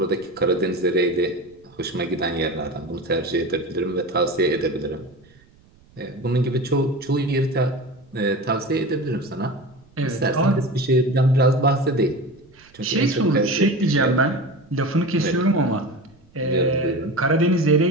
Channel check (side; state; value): right; noise; rumble, 29 dB below the sound